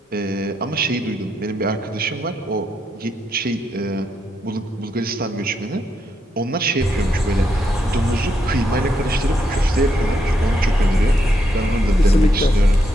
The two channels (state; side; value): normal; both; correlation 0.79